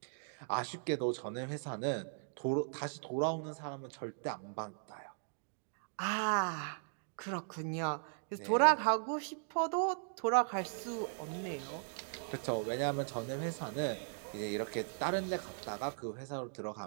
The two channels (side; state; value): left; silent; digital silence